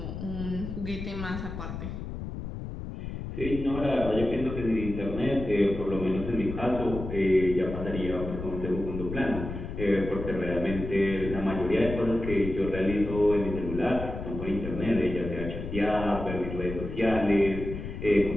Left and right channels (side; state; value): left; noise; rumble, 7 dB below the sound